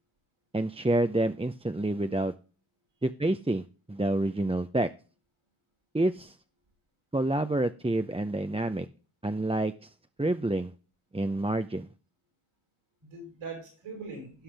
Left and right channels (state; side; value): normal; both; correlation 0.79